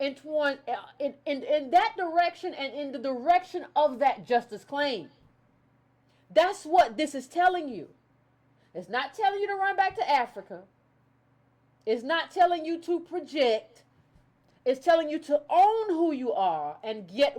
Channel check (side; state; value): both; identical; correlation 1.00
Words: that direction and in the direction of that justice claim. That's what this is telling you. It's not telling you to run back to Africa. It's not telling you to project. It's telling you to own who you are and get